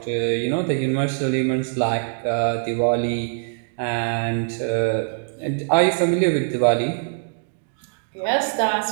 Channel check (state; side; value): silent; left; digital silence